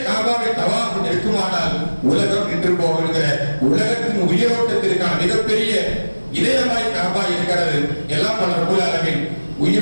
காபாவை தவாஃப் நிற்குமானால் உலகம் நின்று போகிற உலகத்தின் உயிரோட்டத்திற்கான மிகப்பெரிய இதயமாய் காபா இருக்கிறது. எல்லாம் பல ரப்பல் ஆலமீன்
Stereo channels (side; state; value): both; inverted; correlation -1.00